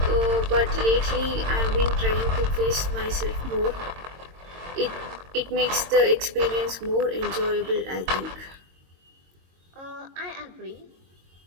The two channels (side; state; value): left; late; 22 ms